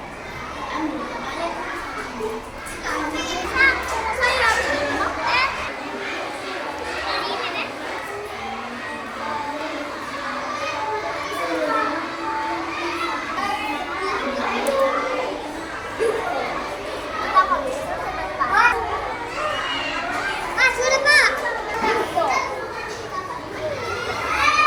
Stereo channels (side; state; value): both; identical; correlation 1.00